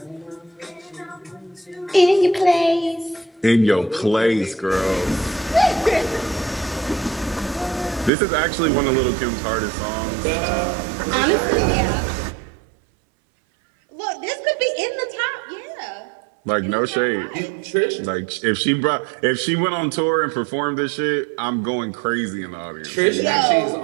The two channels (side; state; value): left; drops out; at 8.1 s